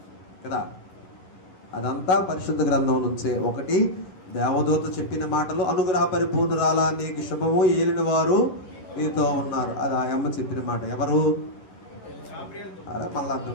కదా. అదంతా పరిశుద్ధ గ్రంథం నుంచే. ఒకటి దేవదూత చెప్పిన మాటలు, అనుగ్రహ పరిపూర్ణురాలా నీకు శుభము, ఏలిన వారు మీతో ఉన్నారు. అది ఆ అమ్మ చెప్పిన మాట. ఎవరు? మళ్ళా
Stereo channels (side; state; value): right; late; 11 ms